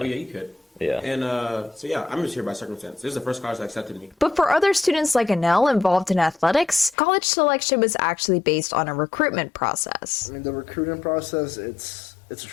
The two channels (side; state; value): right; drops out; at 7.0 s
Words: you could. Yeah. And so, yeah, I'm just here by circumstance. This is the first college that accepted me. But for other students like Anel involved in athletics, college selection was actually based on a recruitment process. I mean, the recruiting process, it's a